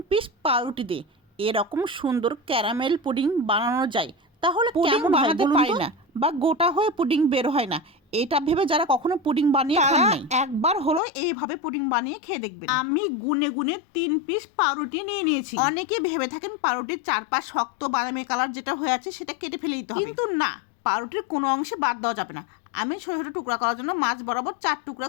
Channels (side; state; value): right; drops out; at 11.0 s